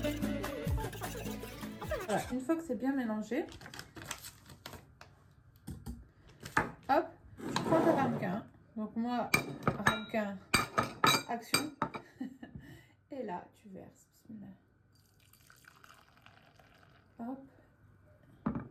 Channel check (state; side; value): identical; both; correlation 1.00